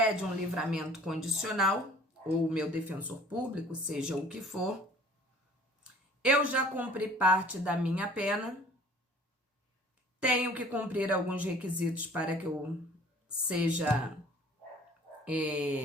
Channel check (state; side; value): normal; both; correlation 0.51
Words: um livramento condicional, ou o meu defensor público, seja o que for, eu já cumpri parte da minha pena, tenho que cumprir alguns requisitos para que eu seja